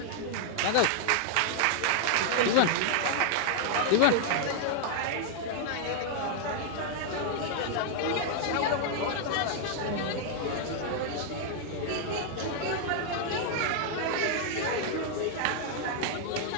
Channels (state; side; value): different; both; correlation 0.00